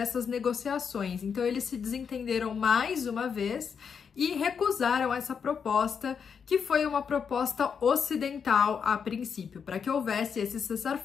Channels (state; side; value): quieter; right; 6.6 dB